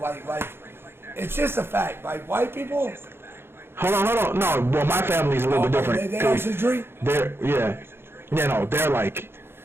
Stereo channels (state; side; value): late; left; 0.11 ms